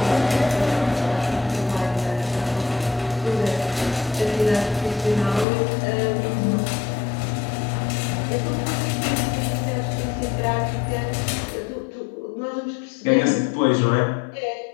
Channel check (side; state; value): right; drops out; at 5.5 s